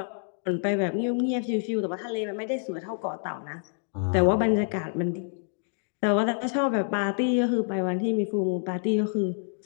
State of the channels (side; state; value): right; silent; digital silence